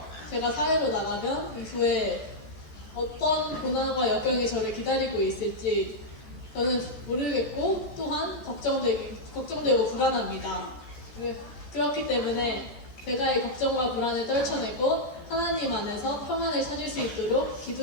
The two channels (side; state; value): right; late; 14 ms